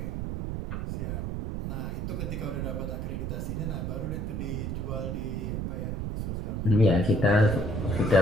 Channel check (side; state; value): right; noise; rumble, 2 dB below the sound